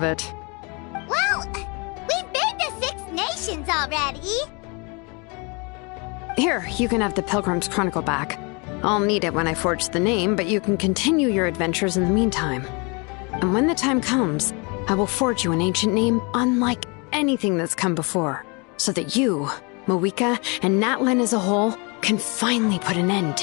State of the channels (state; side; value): quieter; right; 30.8 dB